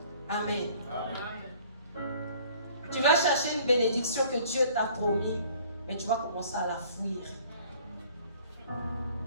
Amen. Amen. Tu vas chercher chercher une bénédiction que Dieu t'a promis, mais tu vas commencer à la fuir.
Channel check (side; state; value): both; inverted; correlation -0.54